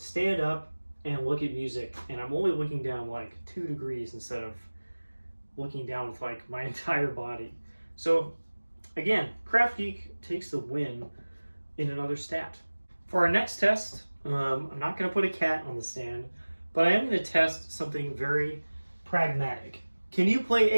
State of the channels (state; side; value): inverted; both; correlation -1.00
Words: up and look at music, and I'm only looking down like 2 degrees instead of looking down with like my entire body. So again, KraftGeek takes the win in another stat. For our next test, I'm not going to put a cat on the stand, but I am going to test something very pragmatic. Can you play